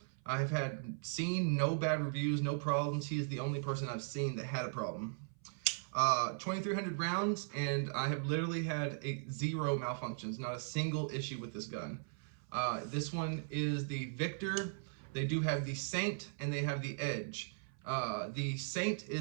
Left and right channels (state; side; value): silent; left; 52 dB below the other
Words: I have seen no bad reviews, no problems. He is the only person I've seen that had a problem. 2,300 rounds, and I have literally had zero malfunctions, not a single issue with this gun. This one is the Victor. They do have the Saint, and they have the Edge. The Saint